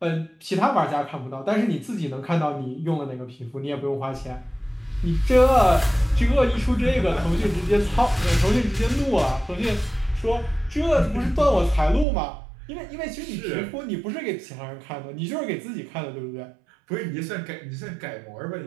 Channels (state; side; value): drops out; left; at 12.1 s